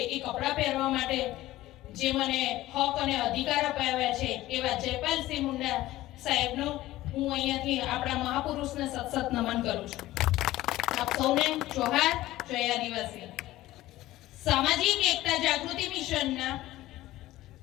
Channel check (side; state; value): right; quieter; 16.2 dB